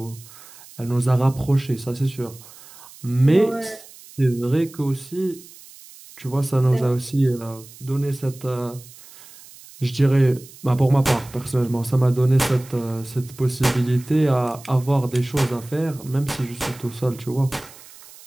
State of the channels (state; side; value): noise; right; hiss, 20 dB below the sound